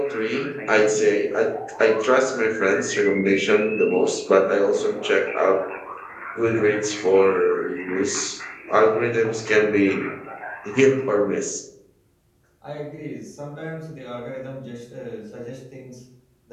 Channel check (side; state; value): both; identical; correlation 1.00